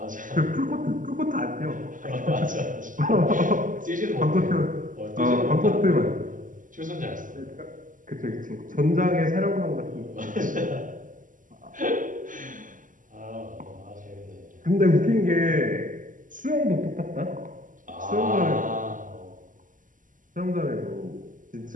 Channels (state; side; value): late; left; 0.38 ms